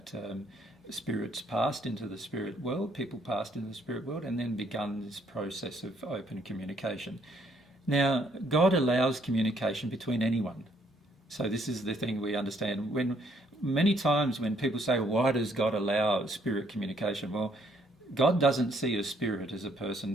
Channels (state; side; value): normal; both; correlation 0.68